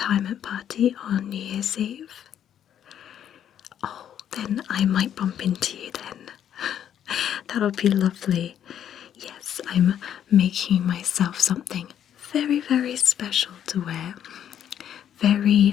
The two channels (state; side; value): quieter; right; 9.8 dB